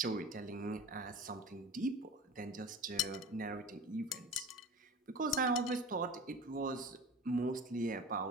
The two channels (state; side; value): normal; both; correlation 0.35